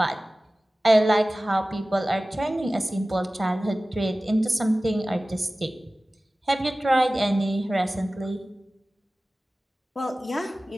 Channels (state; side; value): normal; both; correlation 0.97